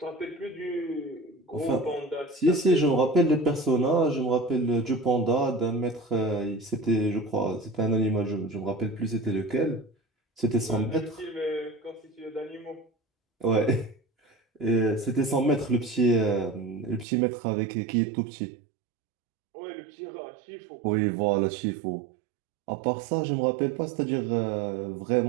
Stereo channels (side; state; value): left; drops out; at 17.1 s